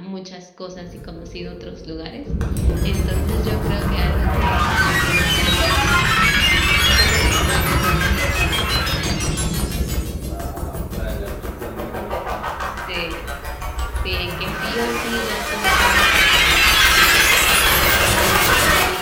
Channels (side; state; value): both; identical; correlation 1.00